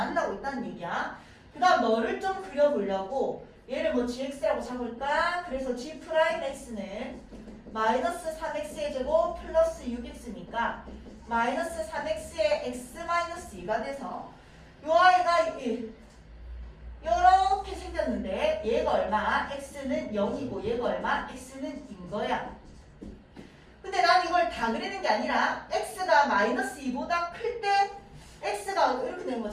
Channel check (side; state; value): both; identical; correlation 1.00